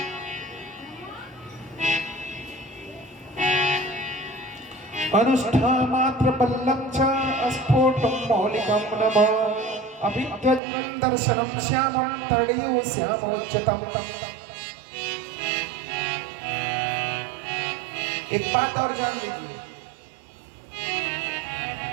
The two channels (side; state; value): left; drops out; at 10.6 s